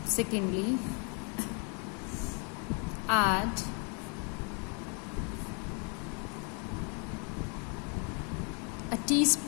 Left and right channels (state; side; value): quieter; right; 37.4 dB